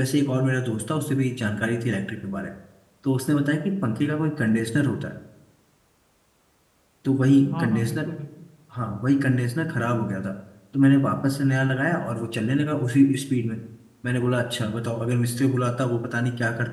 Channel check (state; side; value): identical; both; correlation 1.00